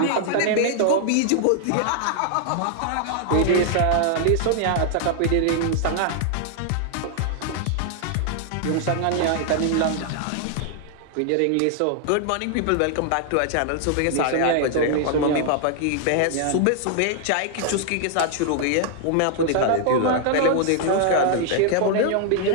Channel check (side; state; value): both; different; correlation 0.00